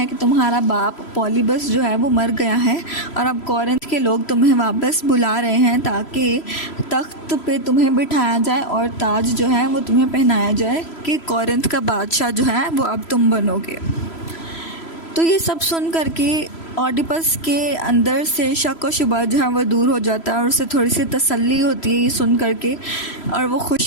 कि तुम्हारा बाप पॉलीबस जो है वो मर गया है और अब कोरिंथ के लोग तुम्हें वापस बुला रहे हैं ताकि तख्त पे तुम्हें बिठाया जाए और ताज जो है वो तुम्हें पहनाया जाए कि कोरिंथ का बादशाह जो है वो अब तुम बनोगे। तो ये सब सुन करके ऑडिपस के अंदर से शक और शुबा जो है वो दूर हो जाता है और उसे थोड़ी सी तसल्ली होती है ये सुन करके, और वो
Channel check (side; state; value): right; late; 3.0 ms